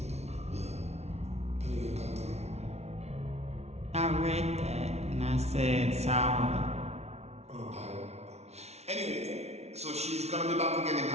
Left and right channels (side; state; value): left; late; 0.31 ms